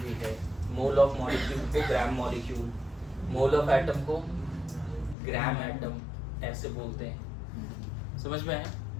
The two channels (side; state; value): right; drops out; at 5.2 s